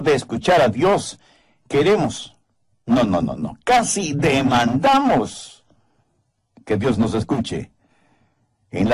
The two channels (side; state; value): both; identical; correlation 1.00